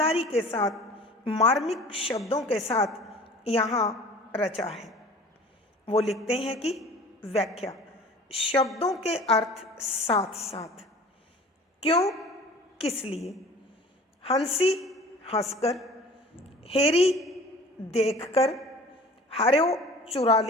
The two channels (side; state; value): both; normal; correlation 0.45